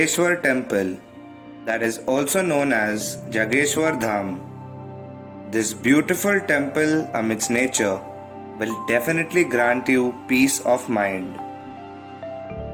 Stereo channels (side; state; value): both; identical; correlation 1.00